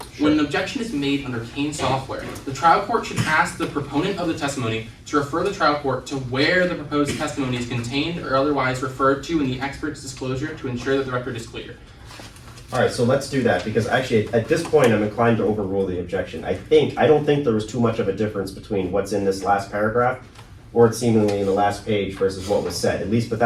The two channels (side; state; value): both; identical; correlation 1.00